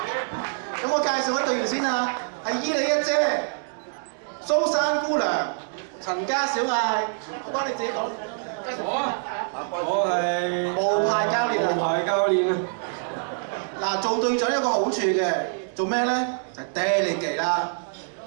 我介紹下隊員先啊，係伊利一姐、蘇珊姑娘、陳家小艾，我幫你自己講。我係無牌教練啊！無牌教練啊！嗱，做隊長有個好處嘅，做咩咧？就係爹你記啦。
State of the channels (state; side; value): silent; left; digital silence